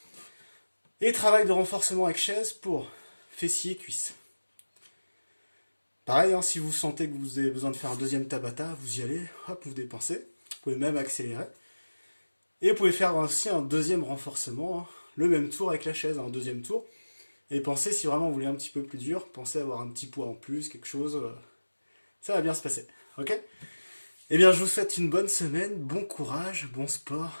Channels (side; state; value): both; inverted; correlation -1.00